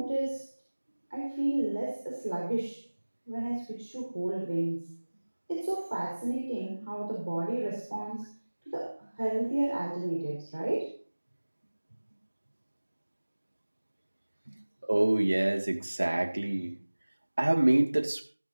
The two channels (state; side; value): inverted; both; correlation -1.00